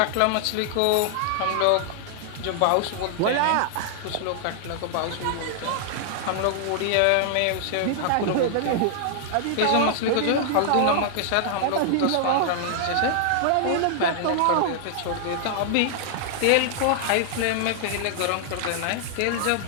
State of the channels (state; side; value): different; both; correlation -0.01